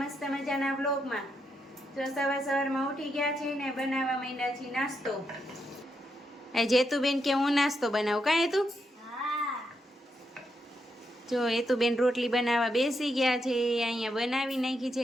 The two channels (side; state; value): both; normal; correlation 0.82